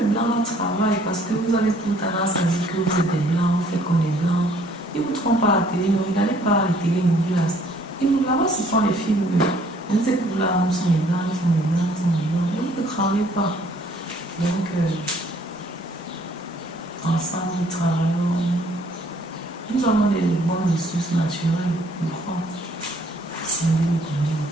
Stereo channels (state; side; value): normal; both; correlation 0.61